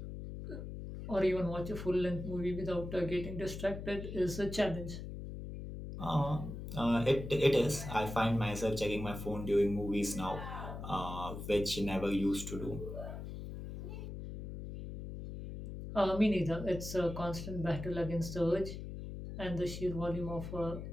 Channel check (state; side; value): noise; left; hum, 8 dB below the sound